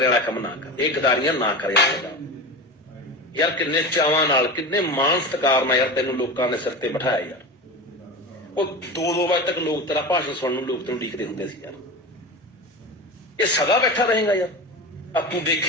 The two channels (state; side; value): normal; both; correlation 0.26